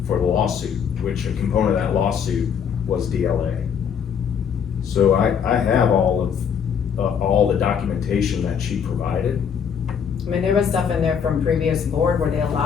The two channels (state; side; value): quieter; right; 7.4 dB